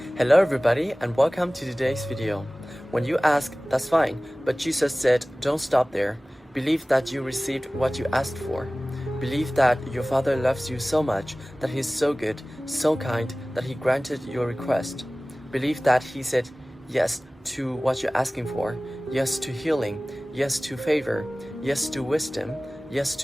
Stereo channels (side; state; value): both; normal; correlation 0.98